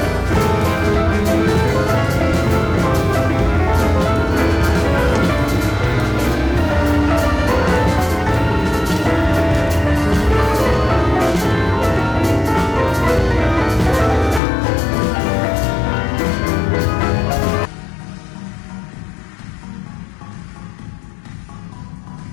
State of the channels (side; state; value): right; drops out; at 14.4 s